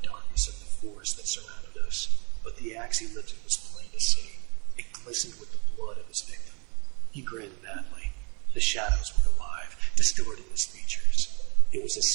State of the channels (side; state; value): left; quieter; 30.9 dB